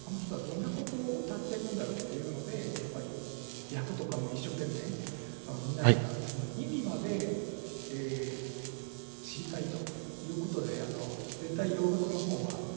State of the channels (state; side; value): silent; left; 52 dB below the other